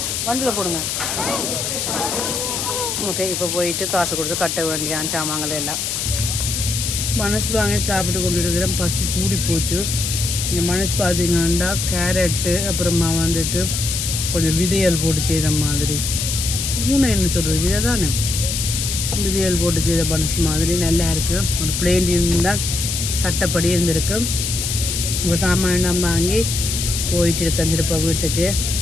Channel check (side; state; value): left; noise; hiss, 2 dB below the sound